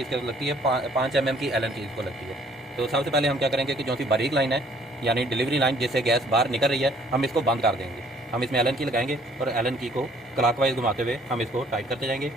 इसके लगती है 5 mm की एलन की इसको लगती है। तो सबसे पहले हम क्या करेंगे कि जो सी बारीक लाइन है यानी डिलीवरी लाइन जिससे गैस बाहर निकल रही है, हम इसको बंद कर देंगे। हम इसमें एलन की लगाएंगे और एलन की को क्लॉकवाइज घुमाते हुए हम इसको टाइट करते जाएंगे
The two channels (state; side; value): normal; both; correlation 0.59